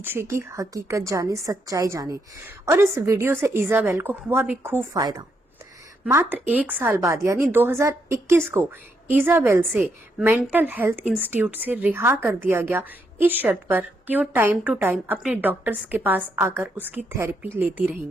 की हकीकत जाने, सच्चाई जाने। और इस वीडियो से इजाबेल को हुआ भी खूब फायदा। मात्र 1 साल बाद यानी 2021 को इजाबेल से मेंटल हेल्थ इंस्टीट्यूट से रिहा कर दिया गया, इस शर्त पर कि वो टाइम टू टाइम अपने डॉक्टर्स के पास आकर उसकी थेरेपी लेती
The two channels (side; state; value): both; normal; correlation 0.78